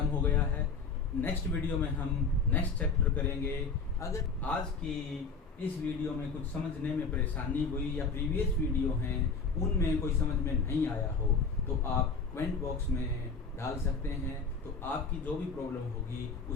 हो गया है। नेक्स्ट वीडियो में हम नेक्स्ट चैप्टर करेंगे। अगर आज की इस वीडियो में कुछ समझने में परेशानी हुई या प्रीवियस वीडियो हैं उनमें कोई समझ में नहीं आया हो तो आप कमेंट बॉक्स में डाल सकते हैं, तो आपकी जो भी प्रॉब्लम होगी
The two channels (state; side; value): quieter; right; 4.7 dB